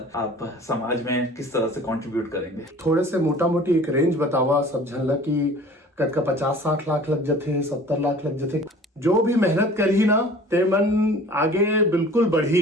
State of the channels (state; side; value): normal; both; correlation 0.46